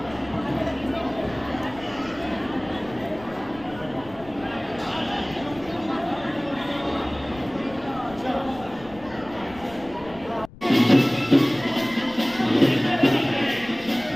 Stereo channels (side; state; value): left; noise; rumble, 20 dB below the sound